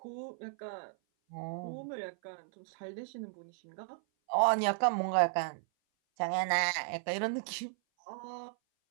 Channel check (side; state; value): left; silent; 54 dB below the other